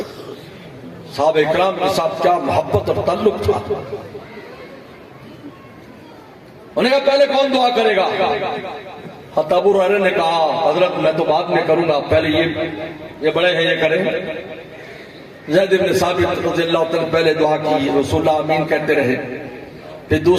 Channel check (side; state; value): both; identical; correlation 1.00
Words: صحابہ اکرام کے ساتھ، کیا محبت اور تعلق تھا۔ انہوں نے کہا پہلے کون دعا کرے گا؟ ابو ہریرہ نے کہا حضرت میں تو بعد میں کروں گا، پہلے یہ بڑے ہیں یہ کریں۔ زید بن ثابت رضی اللہ عنہ پہلے دعا کی، رسول اللہ آمین کہتے رہے، پھر